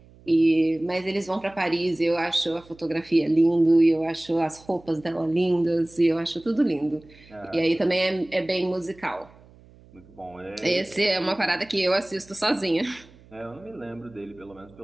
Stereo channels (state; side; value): noise; right; hum, 25 dB below the sound